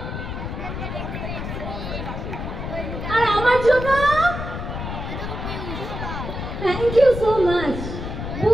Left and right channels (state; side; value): noise; left; rumble, 6 dB below the sound